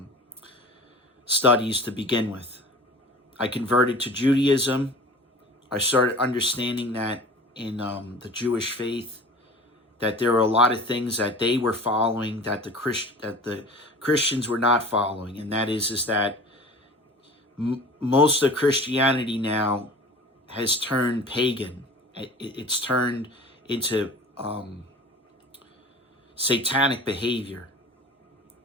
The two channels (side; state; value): both; normal; correlation 0.40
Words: studies to begin with. I converted to Judaism. I started understanding that in the Jewish faith, that there were a lot of things that they were following that the Christians were not following, and that is that most of Christianity now has turned pagan. It's turned into satanic behavior.